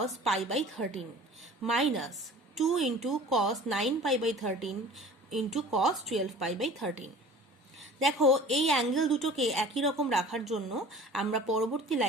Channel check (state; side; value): normal; both; correlation 0.44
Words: pi by 13 minus 2 into cos 9 pi by 13 into cos 12 pi by 13। দেখো এই অ্যাঙ্গেল দুটোকে একই রকম রাখার জন্য আমরা পরবর্তী